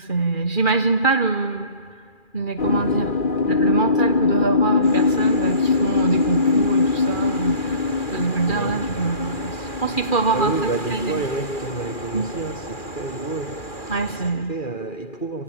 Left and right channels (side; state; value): right; late; 2.4 ms